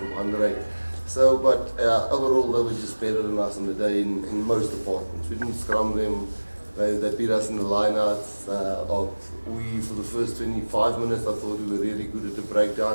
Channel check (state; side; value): inverted; both; correlation -1.00